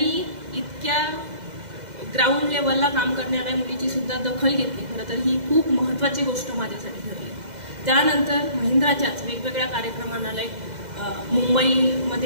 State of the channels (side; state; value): left; late; 2.0 ms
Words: इतक्या ग्राउंड लेवलला काम करणाऱ्या मुलीची सुद्धा दखल घेतली. खरं तर ही खूप महत्त्वाची गोष्ट माझ्यासाठी ठरली. त्यानंतर महिंद्राच्याच वेगवेगळ्या कार्यक्रमांना लाईक